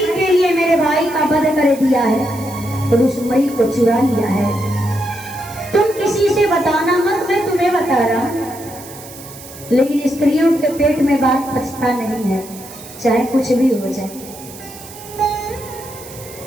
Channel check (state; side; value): noise; right; hiss, 16 dB below the sound